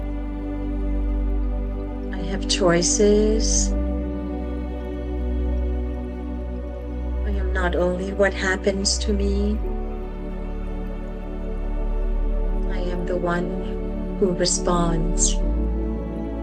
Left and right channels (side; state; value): both; identical; correlation 1.00